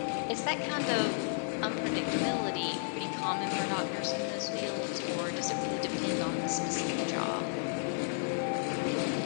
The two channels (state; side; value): silent; right; digital silence